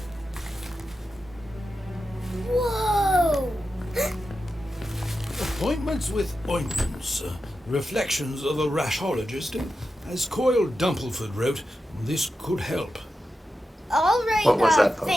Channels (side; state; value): both; normal; correlation 0.90